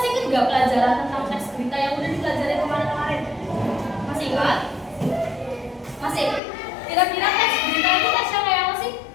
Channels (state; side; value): drops out; right; at 6.4 s